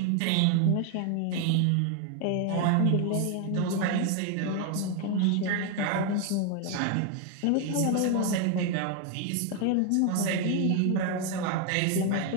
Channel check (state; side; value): different; both; correlation 0.01